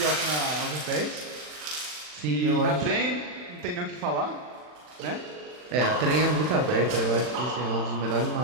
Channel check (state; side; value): late; left; 40 ms